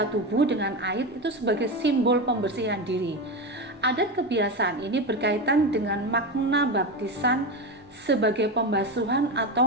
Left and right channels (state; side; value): normal; both; correlation 0.18